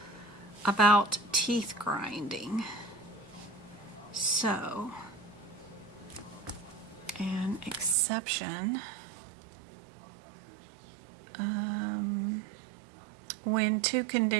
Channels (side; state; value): left; drops out; at 8.0 s